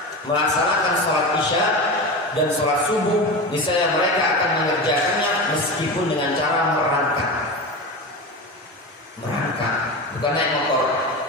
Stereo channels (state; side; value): late; right; 1.2 ms